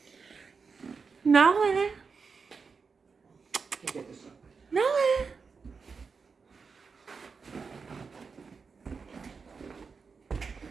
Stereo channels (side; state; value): left; quieter; 5.1 dB